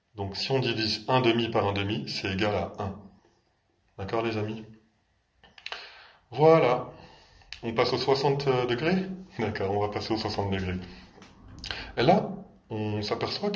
Donc, si on divise 1 demi par 1 demi, c'est égal à 1. D'accord, les amis? Voilà. On passe aux 60 degrés? D'accord, on va passer aux 60 degrés. Et là, on s'aperçoit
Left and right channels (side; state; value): both; identical; correlation 1.00